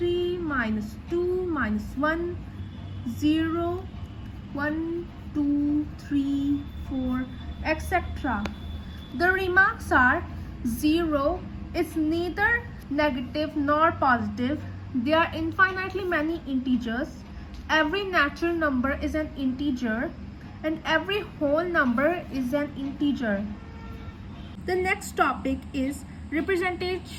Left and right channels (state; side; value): identical; both; correlation 1.00